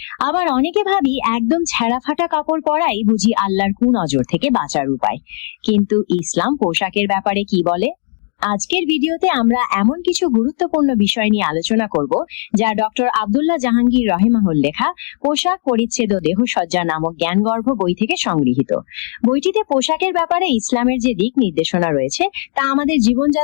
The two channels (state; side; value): silent; right; digital silence